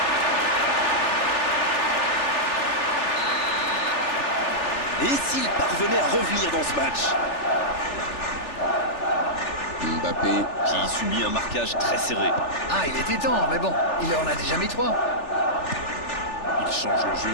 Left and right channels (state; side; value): late; right; 3.4 ms